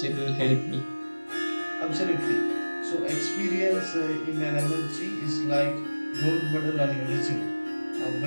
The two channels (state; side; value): inverted; both; correlation -1.00